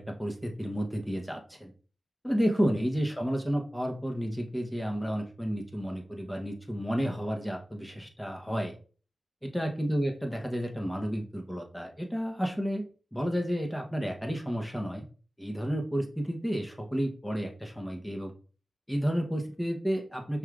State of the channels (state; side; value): normal; both; correlation 0.97